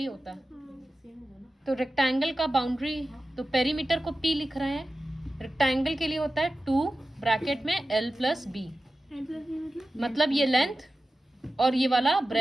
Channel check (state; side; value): normal; both; correlation 0.94